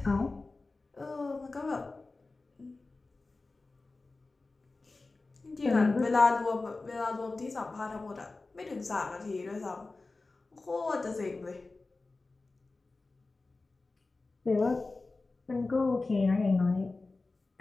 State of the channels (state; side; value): quieter; right; 3.5 dB